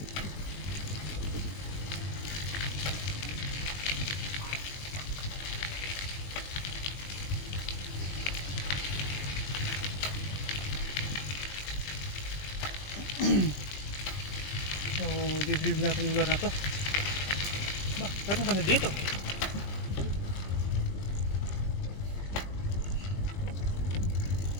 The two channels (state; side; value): late; right; 20 ms